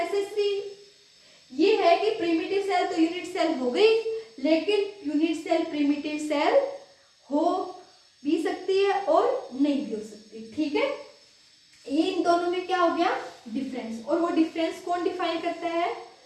ये है कि प्रिमिटिव सेल तो यूनिट सेल हो गई लेकिन यूनिट सेल प्रिमिटिव सेल हो भी सकती है और नहीं भी हो सकती। ठीक है, इन दोनों में क्या हो गया डिफरेंस, और वो डिफरेंस कौन डिफाइन करता है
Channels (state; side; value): identical; both; correlation 1.00